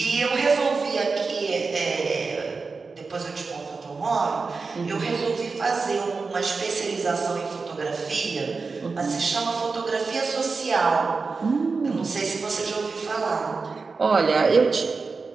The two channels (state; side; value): quieter; left; 4.4 dB